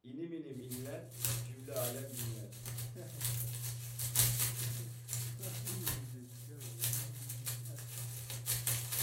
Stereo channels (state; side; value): identical; both; correlation 1.00